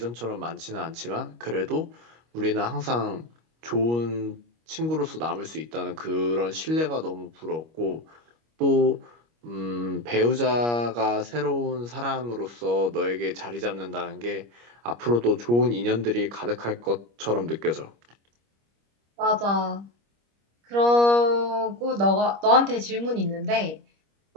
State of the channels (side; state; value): left; late; 25 ms